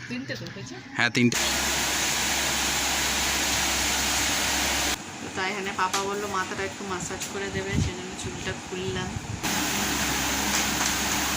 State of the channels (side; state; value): both; identical; correlation 1.00